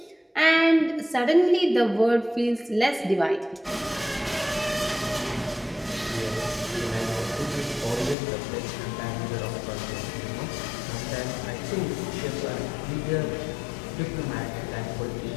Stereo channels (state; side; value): drops out; right; at 8.2 s